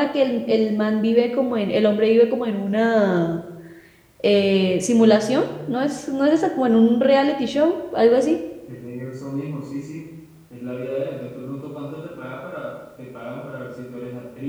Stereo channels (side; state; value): both; identical; correlation 1.00